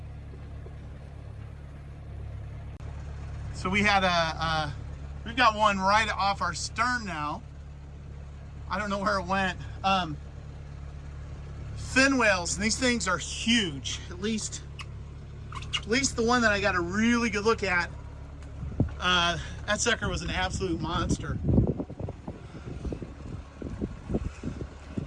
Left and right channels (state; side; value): identical; both; correlation 1.00